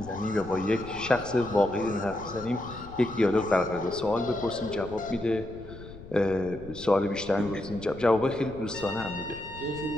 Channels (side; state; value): left; noise; rumble, 16 dB below the sound